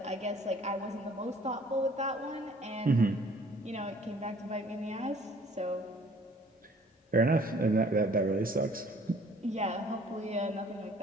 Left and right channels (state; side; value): normal; both; correlation 0.55